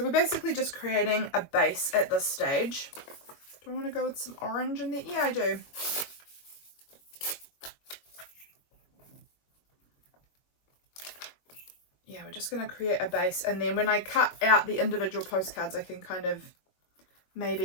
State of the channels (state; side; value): late; right; 22 ms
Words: we're basically just creating a base at this stage. Do I want to go with some orange in there? Yeah, I do. Yeah, we're just going to create a base, and then when I cut out the individual postcards, I can kind of